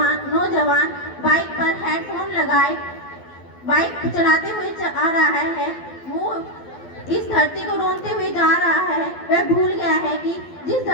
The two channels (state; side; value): late; right; 12 ms